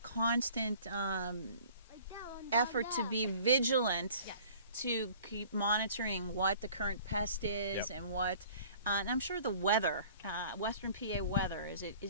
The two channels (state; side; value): inverted; both; correlation -0.50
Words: constant effort to be vigilant, Yes. to keep monitoring what the current pest is Yep. and what. And I'm sure the weather, Western PA weather, is